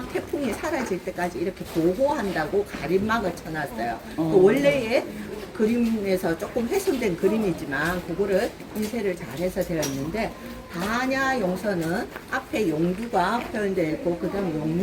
태풍이 사라질 때까지 이렇게 보호한다고 가림막을 쳐놨어요. 그 원래의 그림에서 조금 훼손된 그림이지만 그거를 인쇄를 잘해서 되어 있는데 반야용선은 앞에 용두가 표현되어 있고 그 다음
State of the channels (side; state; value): both; identical; correlation 1.00